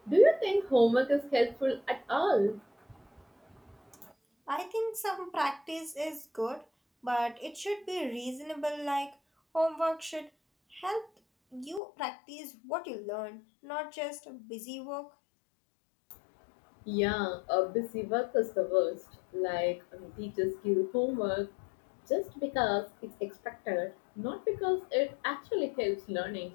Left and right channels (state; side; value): drops out; right; at 11.8 s